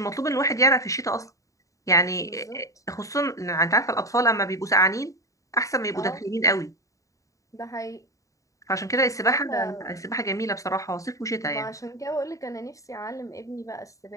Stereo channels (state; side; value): late; right; 0.16 ms